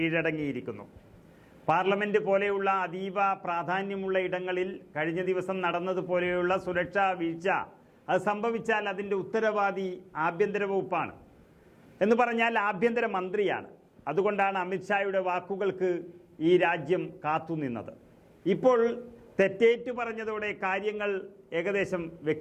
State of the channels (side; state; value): both; identical; correlation 1.00